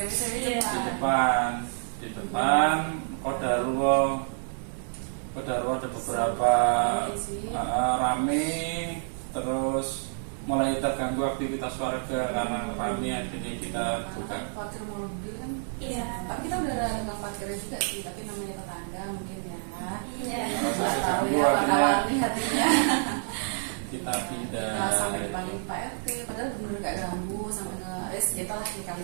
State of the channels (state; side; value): silent; left; 56 dB below the other